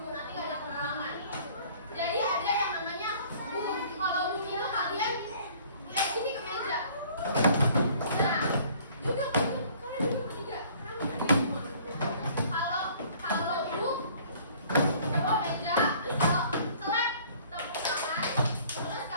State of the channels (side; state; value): both; inverted; correlation -0.54